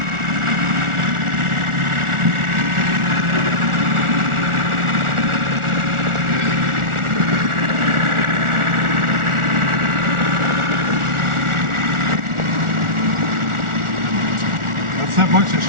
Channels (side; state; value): left; late; 1.4 ms